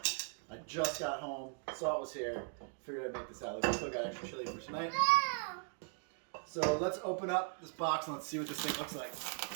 I just got home, saw it was here, figured I'd make this out. We still got extra chili for tonight. So let's open up this box and let's see what this thing looks like.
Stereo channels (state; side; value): silent; left; 52 dB below the other